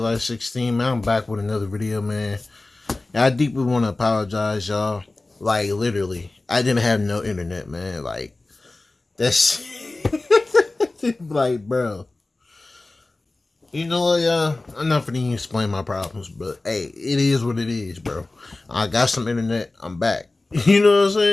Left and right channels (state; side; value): quieter; right; 3.1 dB